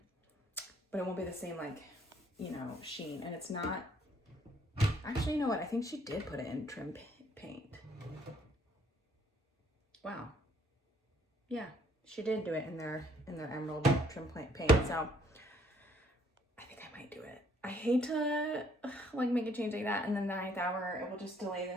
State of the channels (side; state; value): both; normal; correlation 0.64